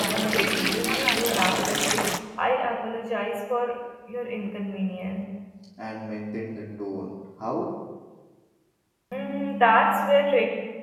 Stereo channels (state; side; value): identical; both; correlation 1.00